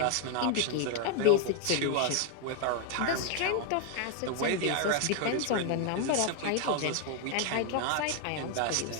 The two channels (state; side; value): different; both; correlation 0.00